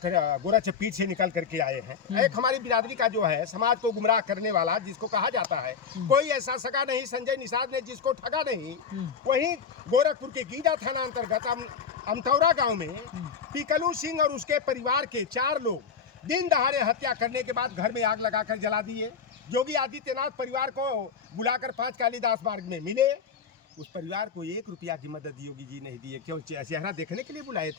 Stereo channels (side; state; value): right; quieter; 6.4 dB